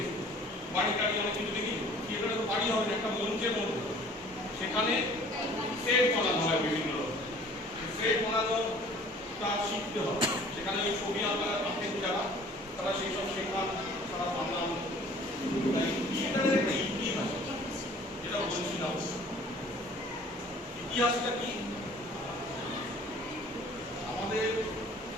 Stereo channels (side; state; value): both; normal; correlation 0.51